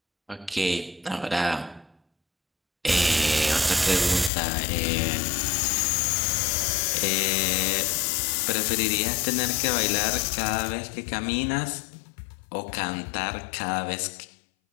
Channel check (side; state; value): right; drops out; at 4.3 s